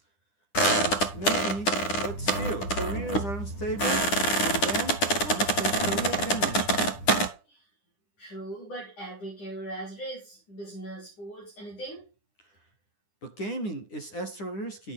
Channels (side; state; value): right; late; 9.9 ms